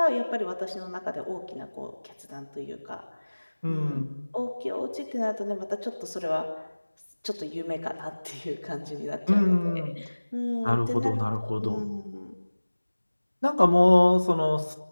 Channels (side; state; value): both; inverted; correlation -1.00